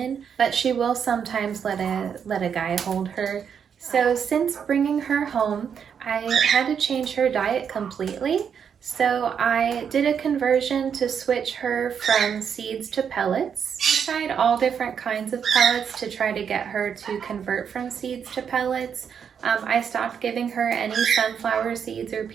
but she will sometimes let a guy hold her. So since bringing her home, I had to change her diet completely. So I did a conversion to switch her from seeds to pellets. I tried all different kinds of pellets to try to get her to convert from seeds to pellets. I stopped giving her any sunflower seeds or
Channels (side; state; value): left; quieter; 7.4 dB